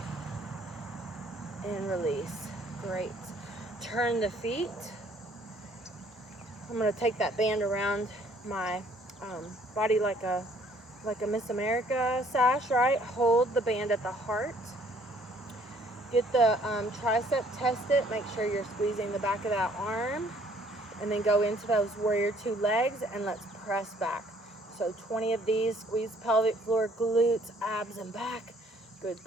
And release. Great. Turn the feet. I'm going to take that band around my body like a Miss America sash, right? Hold the band at the heart. Get the tricep tested. Make sure you're squeezing the back of that arm. And then go into those warrior two legs, and let's press back. So 20 of these. Squeeze pelvic floor, glutes, abs, and back. Good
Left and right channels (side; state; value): both; normal; correlation 0.61